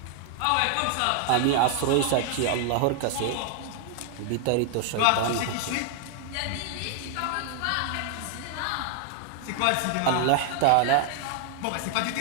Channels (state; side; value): different; both; correlation 0.00